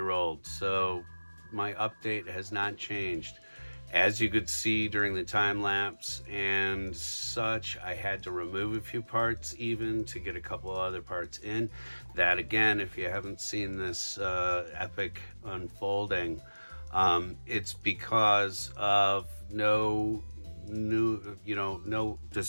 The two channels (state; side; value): inverted; both; correlation -1.00